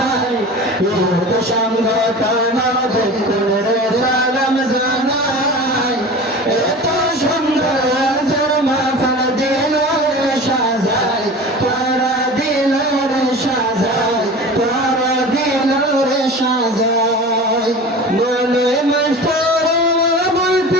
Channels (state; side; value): normal; both; correlation 0.35